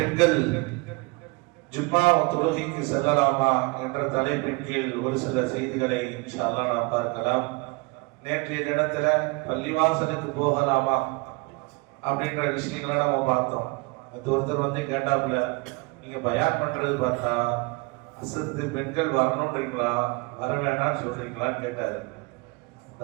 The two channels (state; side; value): quieter; left; 27.2 dB